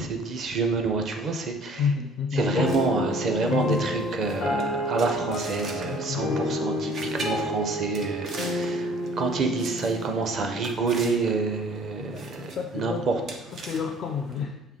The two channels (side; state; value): both; normal; correlation 0.52